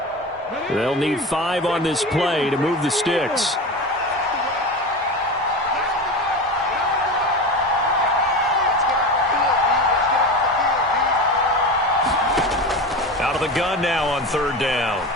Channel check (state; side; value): normal; both; correlation 0.26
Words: They'll need 5 on this play to move the sticks. Out of the gun now on 3rd down.